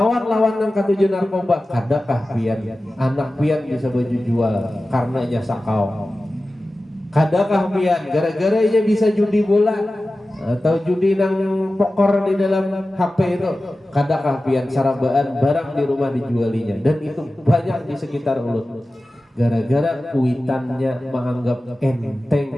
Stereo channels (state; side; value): normal; both; correlation 0.95